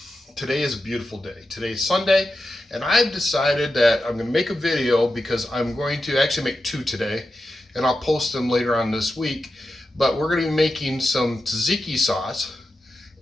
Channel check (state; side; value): normal; both; correlation 0.90